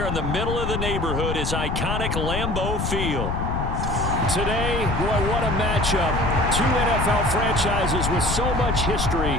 in the middle of the neighborhood is iconic Lambeau Field. Today, boy, what a matchup. Two NFL franchises with so much history,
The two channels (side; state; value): left; noise; rumble, 2 dB below the sound